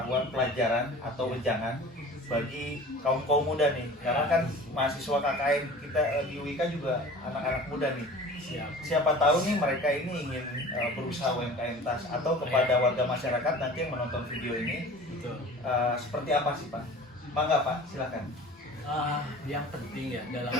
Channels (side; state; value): both; normal; correlation 0.41